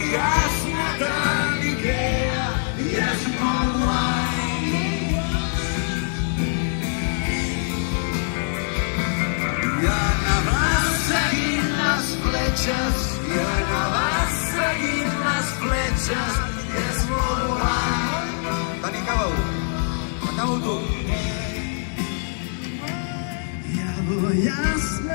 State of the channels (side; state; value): right; silent; 59 dB below the other